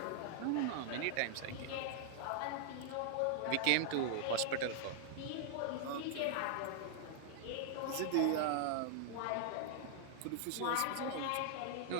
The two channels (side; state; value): both; different; correlation -0.01